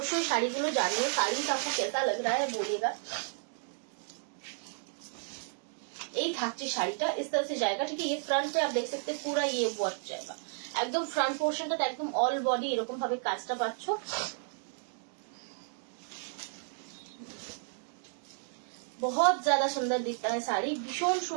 শাড়িগুলো জানিও, শাড়ি आपको कैसा लग रहा है बोलिएगा। এই থাকছে শাড়িটা इस तरह से जाएगा, ठीक है। ये फ्रंट पे आप देख सकते हैं पूरा ये वर्क जाएगा, एकदम फ्रंट पोर्शनটা একদম অল বডি এরকম ভাবে কাজটা পাচ্ছো। बहुत ज्यादा सुंदर दिखता है শাড়ি, ভীষণ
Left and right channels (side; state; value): left; silent; 56 dB below the other